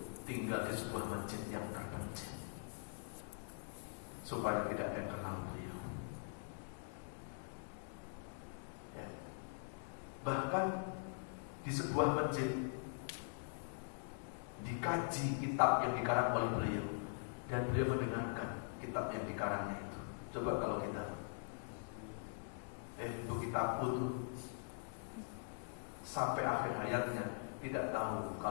tinggal di sebuah masjid yang terpencil, supaya tidak ada yang kenal beliau. Ya. Bahkan di sebuah masjid dikaji kitab yang dikarang oleh beliau, dan beliau mendengarkan kitab yang dikarangnya itu. Coba kalau kita itu kitabku tuh, sampai akhir hayatnya tidak tahu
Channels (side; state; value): right; silent; digital silence